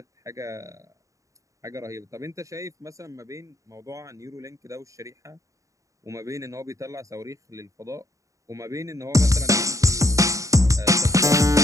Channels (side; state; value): left; late; 0.16 ms